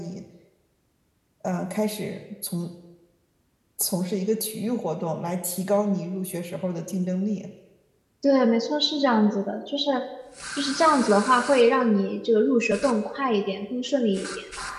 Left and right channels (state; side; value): identical; both; correlation 1.00